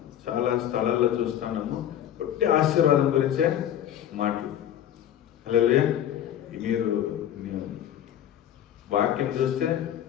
చాలా స్థలాల్లో చూస్తున్నాము, ఒట్టి ఆశీర్వాదం గురించే మాటలు. హల్లెలూయా. మీరు వాక్యం చూస్తే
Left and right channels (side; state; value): right; quieter; 10.7 dB